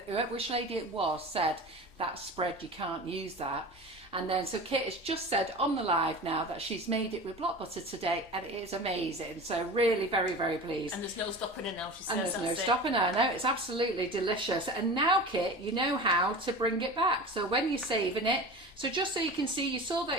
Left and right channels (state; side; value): noise; left; hum, 30 dB below the sound